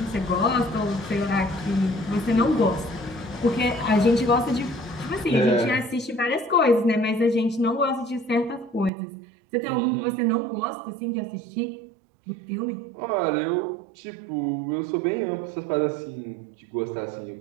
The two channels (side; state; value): left; drops out; at 8.9 s